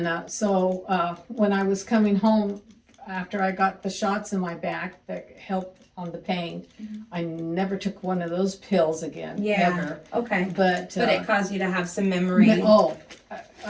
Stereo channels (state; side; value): identical; both; correlation 1.00